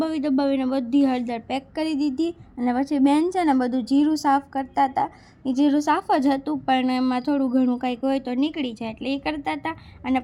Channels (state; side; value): identical; both; correlation 1.00